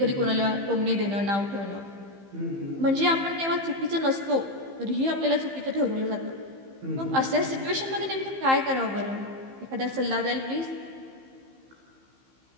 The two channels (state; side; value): late; left; 15 ms